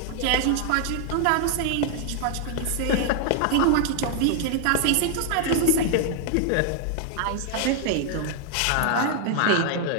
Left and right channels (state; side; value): different; both; correlation 0.00